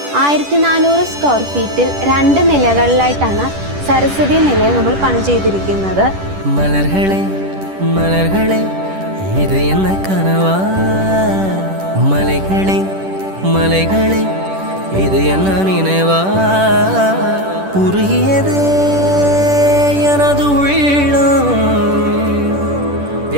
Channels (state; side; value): late; left; 10 ms